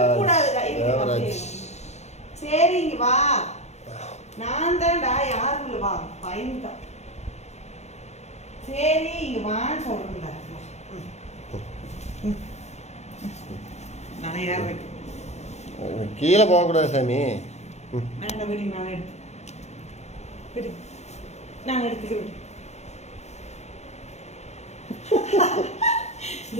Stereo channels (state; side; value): late; right; 0.32 ms